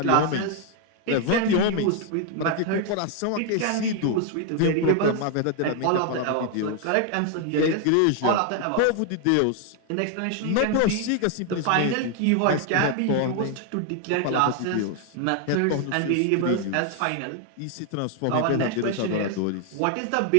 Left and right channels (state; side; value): different; both; correlation 0.00